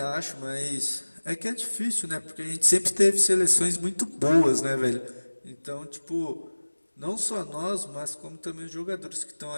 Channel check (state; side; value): inverted; both; correlation -1.00